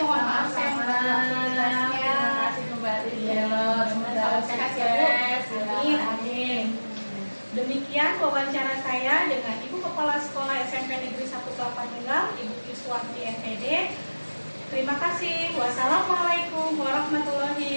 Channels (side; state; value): both; inverted; correlation -1.00